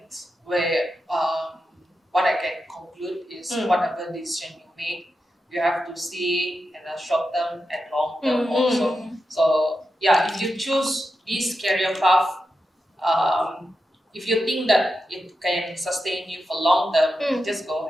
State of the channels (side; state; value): both; normal; correlation 0.88